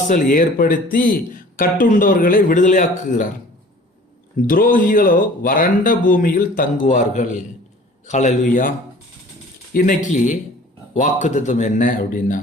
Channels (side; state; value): both; normal; correlation 0.48